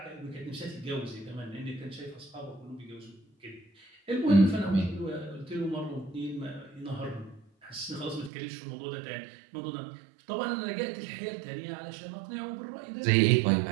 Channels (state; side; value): drops out; left; at 8.3 s